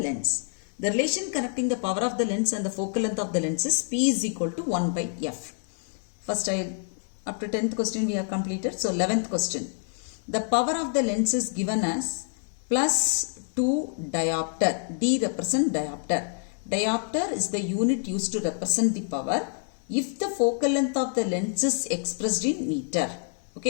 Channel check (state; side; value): silent; right; 60 dB below the other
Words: lens. The relation connecting the power of the lens and the focal length of the lens is P is equal to 1 by F. First, up to 10th question we have completed. So 11th question. The power of the lens is given as plus 2 diopter. D represent diopter. Diopter is the unit used to represent the power if the focal length of the lens is expressed in meter.